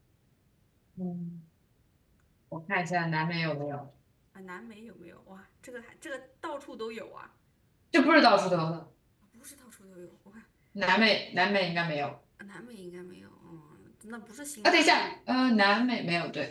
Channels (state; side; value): identical; both; correlation 1.00